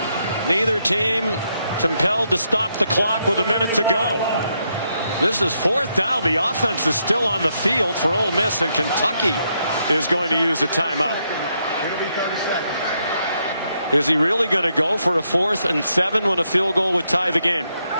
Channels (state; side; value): inverted; both; correlation -0.78